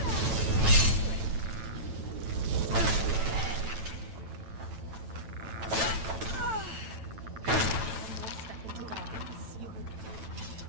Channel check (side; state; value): left; late; 9.0 ms